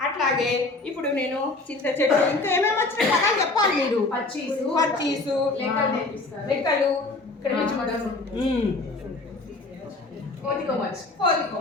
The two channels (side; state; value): right; quieter; 3.2 dB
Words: అట్లాగే ఇప్పుడు నేను చింత చెట్టు ఇంకా ఏమేమి వచ్చిన పదాలు చెప్పాలి మీరు. పచ్చీసు, లెక్కలు, ఇక్కడ